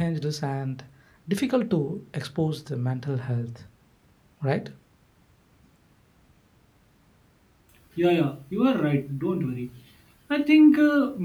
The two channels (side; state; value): both; identical; correlation 1.00